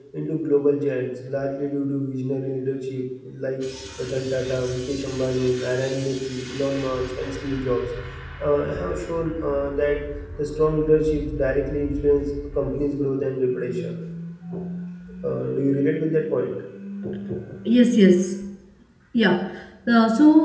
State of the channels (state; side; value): identical; both; correlation 1.00